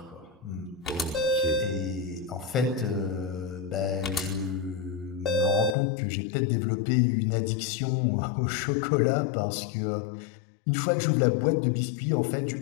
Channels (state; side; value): drops out; right; at 5.8 s